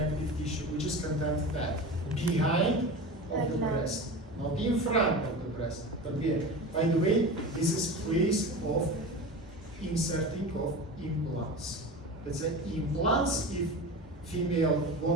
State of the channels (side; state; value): both; normal; correlation 0.30